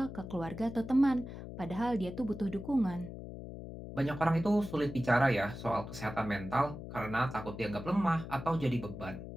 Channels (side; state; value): left; noise; hum, 10 dB below the sound